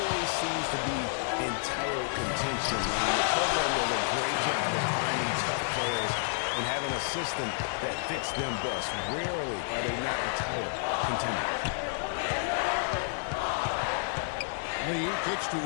seems to be in title contention. The program does a great job of finding tough players and having a system that fits them best. Rarely are they not a title contender. Lee kicks to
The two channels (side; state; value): right; silent; digital silence